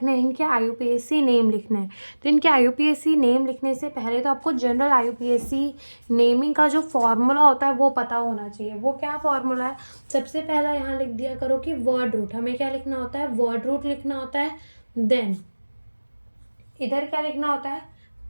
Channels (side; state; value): both; inverted; correlation -1.00